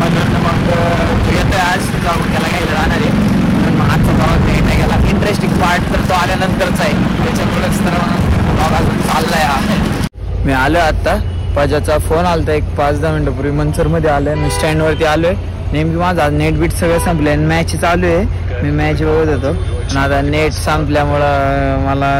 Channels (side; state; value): both; identical; correlation 1.00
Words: मग येतोय आज जाऊन त्याला घ्यायला जाणार आहे पण मग आजचा प्रवास नाही गेला इंटरेस्टिंग पार्ट तर तो आल्यानंतरचा आहे त्याच्यामुळं मी आलो आता. पाजाचा फोन आलता एक 5-10 मिनिटापूर्वी. मनसरमध्ये आलोय मी, स्टँडवरती आलोय. नेमकी माझा नेट बीट सगळं संपलंय. मॅच चालू आहे, मी मॅच बघत होतो. पण आता नेट संपल्यामुळं मला